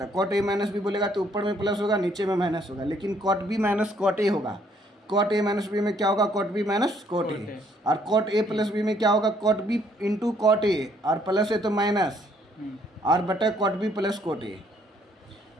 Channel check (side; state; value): both; normal; correlation 0.66